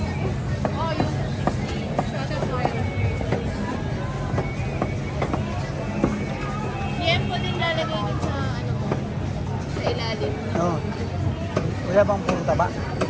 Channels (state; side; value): identical; both; correlation 1.00